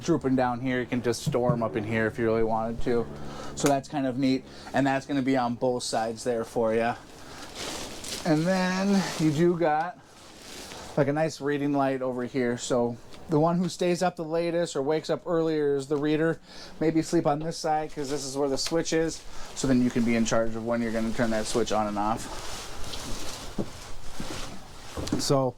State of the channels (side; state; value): both; identical; correlation 1.00